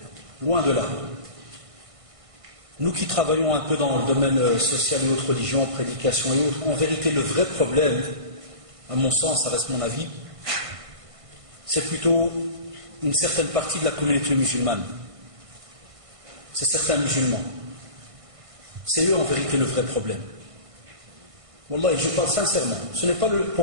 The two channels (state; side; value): late; left; 1.5 ms